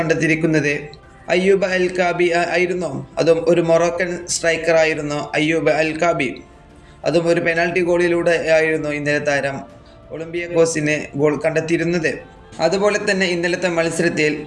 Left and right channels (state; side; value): identical; both; correlation 1.00